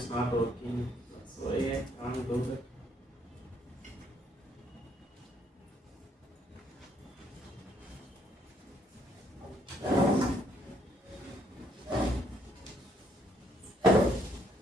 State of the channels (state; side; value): normal; both; correlation 0.69